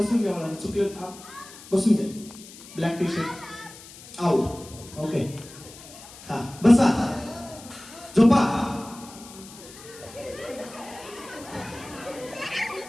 घ्या. मला चुकलं. बसून घ्या. Black tea shirt out. Okay. हा, बसा, झोपा.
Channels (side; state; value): left; noise; hiss, 18 dB below the sound